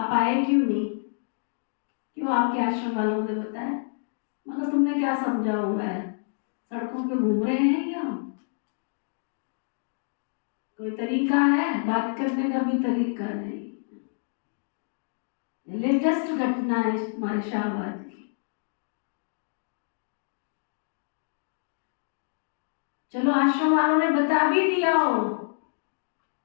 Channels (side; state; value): right; silent; digital silence